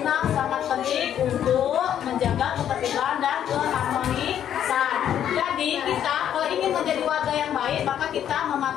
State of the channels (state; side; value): quieter; right; 10.0 dB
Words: sangat penting untuk menjaga ketertiban dan keharmonisan. Jadi kita kalau ingin menjadi warga yang baik, maka kita